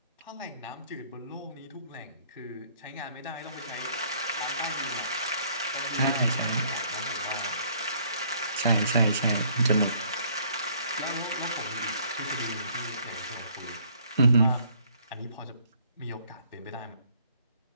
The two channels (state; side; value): inverted; both; correlation -0.62